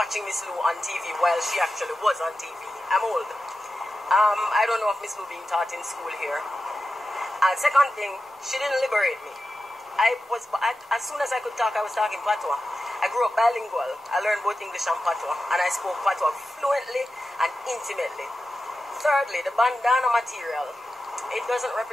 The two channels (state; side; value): normal; both; correlation 0.92